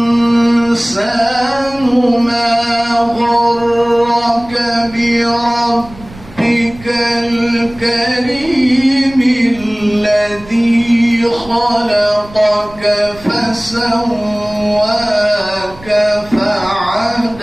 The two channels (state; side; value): noise; right; rumble, 20 dB below the sound